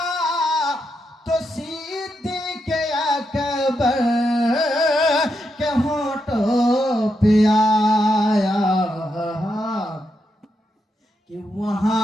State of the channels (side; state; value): both; normal; correlation 0.83